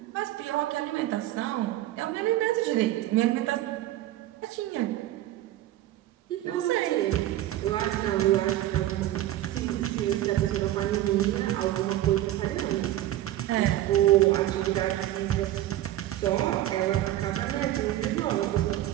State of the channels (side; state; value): left; quieter; 14.1 dB